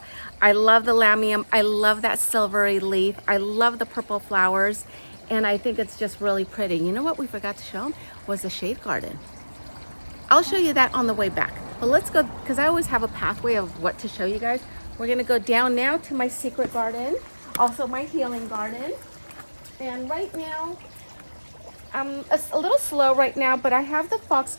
I love the lamium. I love that silvery leaf. I love the purple flowers, and I think it's just really pretty. You know what we forgot to show them was the shade garden. I'll show you that on the way back. But let's go, because I always have a pathway of what to show you guys. We're gonna go down now to my secret garden, also my healing garden. And right now, I'm a little slow right now, but I have the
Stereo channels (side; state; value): both; inverted; correlation -1.00